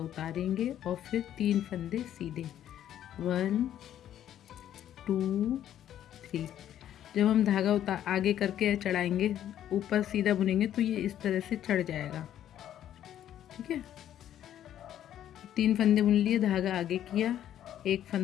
उतारेंगे और फिर 3 फंदे सीधे। 1 2 3। जब हम धागा आगे करके चढ़ाएंगे, ऊपर सीधा बुनेंगे तो ये इस तरह से चढ़ जाएगा। ठीक है, 3 फंदे बुन लिए, धागा आगे किया, एक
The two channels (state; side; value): quieter; right; 11.1 dB